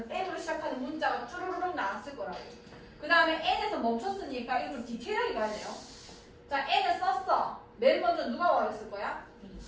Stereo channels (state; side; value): identical; both; correlation 1.00